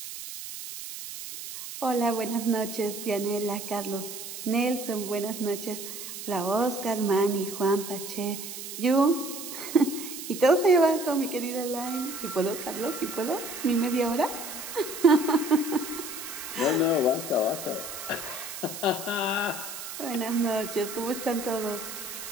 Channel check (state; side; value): noise; right; hiss, 9 dB below the sound